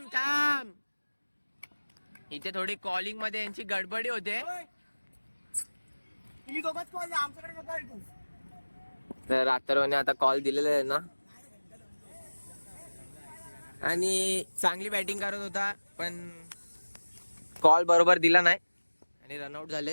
इथे थोडी कॉलिंग मध्ये यांची गडबडी होते. तर अथर्वने आता कॉल दिलेला आहे ना, आणि चांगली बॅटिंग करत होता पण कॉल बरोबर दिला नाही आणि रनआउट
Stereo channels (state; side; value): inverted; both; correlation -1.00